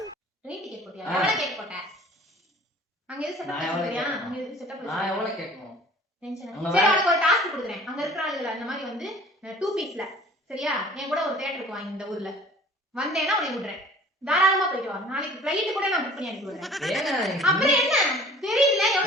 ட்ரெயின் டிக்கெட் போட்டியா? எவ்வளவு கேட் போட்ட? அங்க எது செட்டப் பண்ணியா? அங்க எது செட்டப் நான் எவ்வளவு கேட்கணும்? டென்ஷன். சரி உனக்கு ஒரு டாஸ்க் கொடுக்குறேன். அங்க இருக்கிற ஆளுகளை அந்த மாதிரி வந்து 2 பீஸ்ல சரியா? என் கூட ஒரு தியேட்டருக்கு வாங்க இந்த ஊர்ல. வந்தேன்னா உன்னை விடுறேன். தாராளமா போயிட்டு வா. நாளைக்கு ஃளைட் கூட நான் புக் பண்ணி அனுப்பி விடுறேன். அப்புறம் என்ன? தெரியல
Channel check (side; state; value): both; normal; correlation 0.48